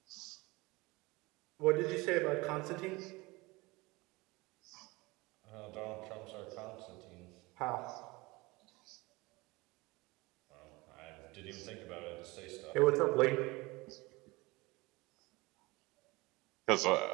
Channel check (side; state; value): left; quieter; 23.0 dB